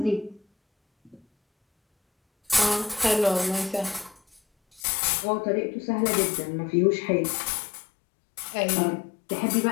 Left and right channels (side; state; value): right; drops out; at 4.8 s